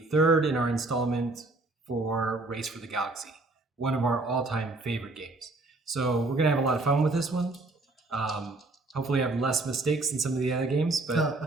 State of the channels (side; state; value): left; quieter; 3.1 dB